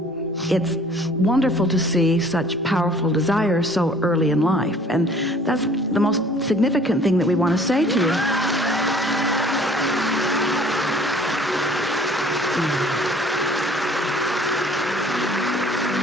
It's wonderful to see such powerful desire so early in life. And that's the most significant thing that we want to say to you.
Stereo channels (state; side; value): normal; both; correlation 0.53